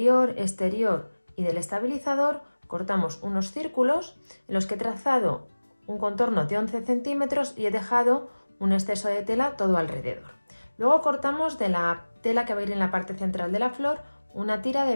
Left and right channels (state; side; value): inverted; both; correlation -1.00